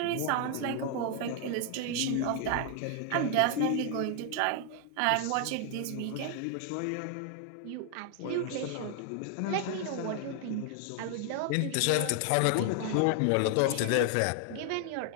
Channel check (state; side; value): different; both; correlation 0.00